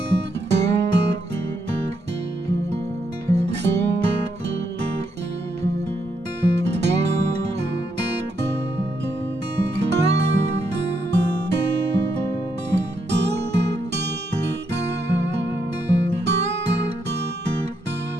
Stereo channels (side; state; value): both; normal; correlation 0.78